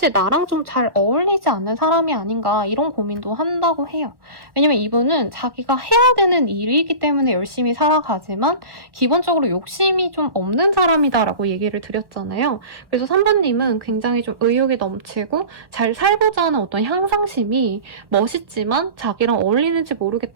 나랑 좀 잘 어울리지 않는 사람이 아닌가 이런 고민도 한다고 해요. 왜냐면 이분은 자기가 해야 되는 일이기 때문에 열심히 살아가지만 기본적으로 욕심이 좀 없는 사람이다라고 얘기를 드렸잖아요. 그래서 3번님은 굉장히 좀 의욕이 넘치고 잘 살고자 하는 어떤 향상심이 멋있지만 자기랑 어울리는지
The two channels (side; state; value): left; late; 1.0 ms